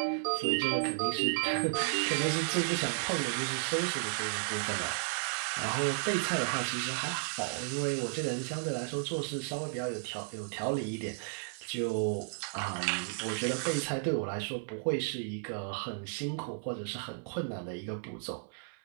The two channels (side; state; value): left; silent; 55 dB below the other